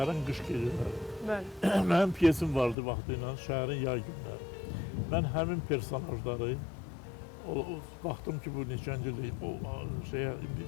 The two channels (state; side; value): drops out; right; at 2.8 s